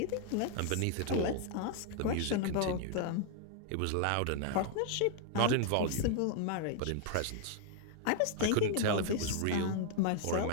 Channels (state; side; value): different; both; correlation 0.00